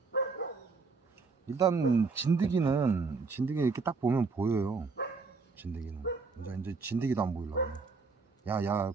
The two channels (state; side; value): quieter; left; 4.5 dB